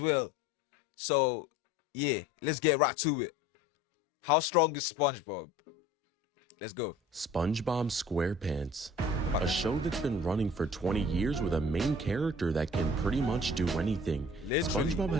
well. So yeah, let's get right to it. How strong is SpongeBob? Let's go. SpongeBob SquarePants, a show that's been running for 20 years with a main character that can pretty much do anything. Literally. SpongeBob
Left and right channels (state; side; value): normal; both; correlation 0.47